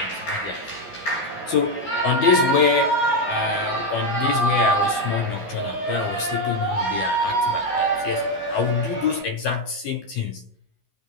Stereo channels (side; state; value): right; late; 13 ms